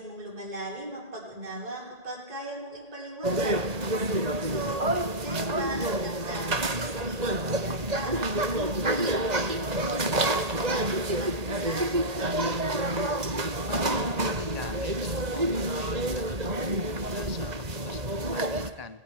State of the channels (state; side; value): late; left; 1.8 ms